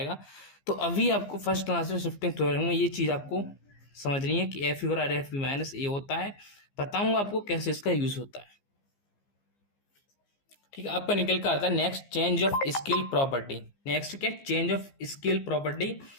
तो अभी आपको फर्स्ट आंसर शिफ्टिंग थ्योरम में ये चीज़ आपको समझनी है कि एफ यू और एफ बी माइनस ए होता है, बताऊंगा आपको कैसे इसका यूज होता है, ठीक है। आपका निकल कर आता है next, change of scale property. Next क्या, चेंज ऑफ स्केल प्रॉपर्टी।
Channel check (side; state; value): right; late; 15 ms